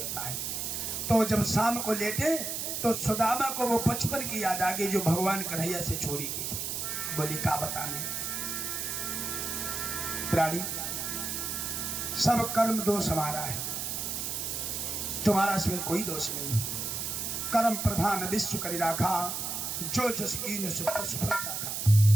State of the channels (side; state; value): right; noise; hiss, 3 dB below the sound